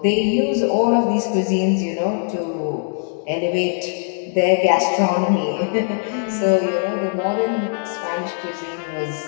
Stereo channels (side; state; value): right; silent; 57 dB below the other